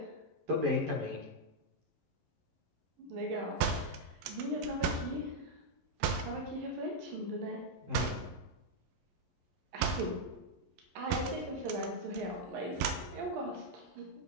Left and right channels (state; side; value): late; left; 11 ms